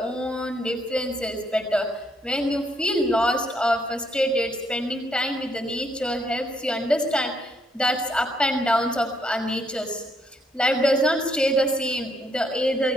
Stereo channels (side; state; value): both; normal; correlation 0.72